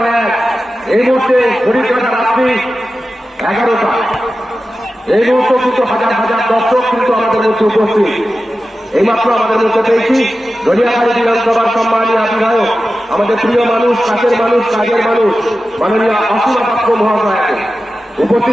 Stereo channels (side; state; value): both; normal; correlation 0.93